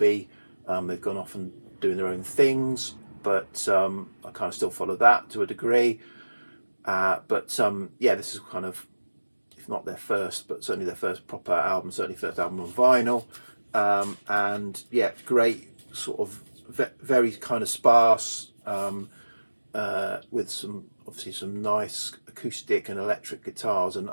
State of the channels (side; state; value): both; inverted; correlation -1.00